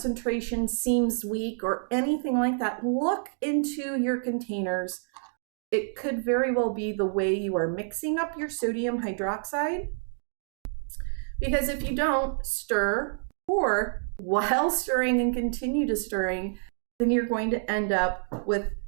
seems weak or anything like that, look into your containers. It could very well be the way you are mixing up your sodium hydroxide, because if you don't stir, or while stirring and continue to stirring, then you're going to end up with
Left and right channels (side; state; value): left; silent; digital silence